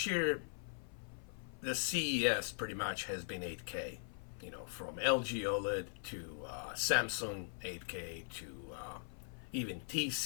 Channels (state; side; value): silent; right; 51 dB below the other